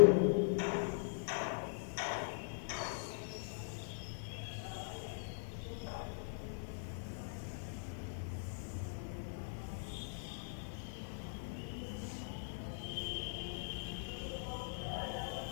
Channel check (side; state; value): right; silent; 50 dB below the other